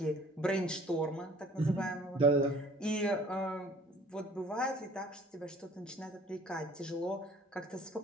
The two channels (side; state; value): both; normal; correlation 0.52